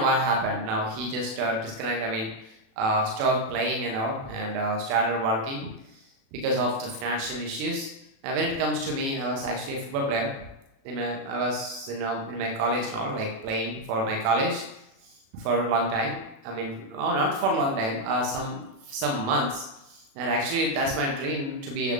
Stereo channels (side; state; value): left; late; 36 ms